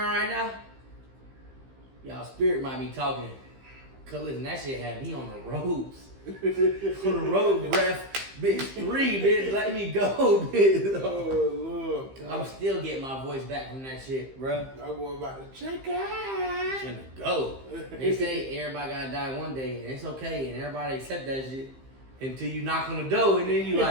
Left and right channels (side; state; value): left; late; 15 ms